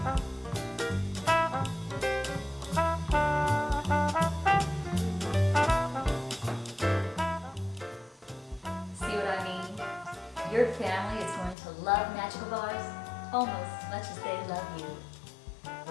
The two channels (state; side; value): drops out; right; at 11.6 s